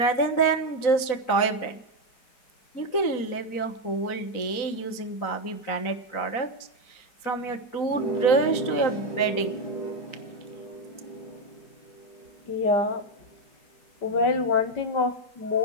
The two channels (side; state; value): right; late; 4.0 ms